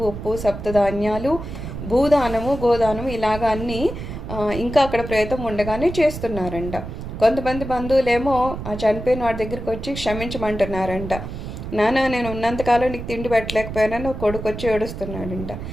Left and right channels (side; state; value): right; noise; rumble, 8 dB below the sound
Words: ఉప్పు, సప్తధాన్యాలు, భూదానము, గోదానము ఇలాగ అన్నీ ఇంకా అక్కడ ప్రేతం ఉండగానే చేస్తున్నారంట. కొంతమంది బంధువులేమో ఆ చనిపోయిన వాడి దగ్గరికి వచ్చి క్షమించమంటున్నారంట. నాన్న నేను ఉన్నంతకాలం నీకు తిండి పెట్టలేకపోయానని ఒక కొడుకు వచ్చి ఏడుస్తున్నాడంట.